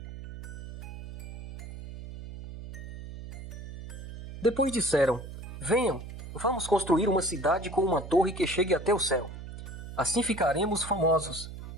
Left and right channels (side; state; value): right; noise; hum, 10 dB below the sound